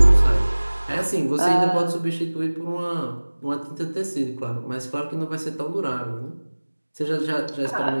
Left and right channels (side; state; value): both; inverted; correlation -1.00